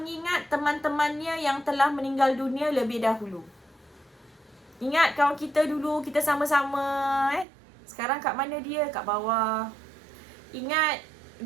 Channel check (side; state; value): left; drops out; at 7.5 s